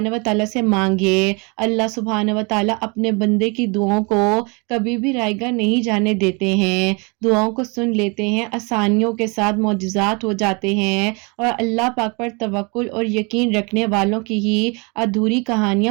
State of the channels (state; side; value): quieter; left; 30.4 dB